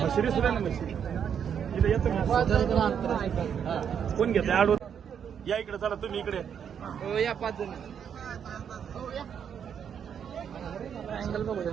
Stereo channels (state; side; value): quieter; left; 8.0 dB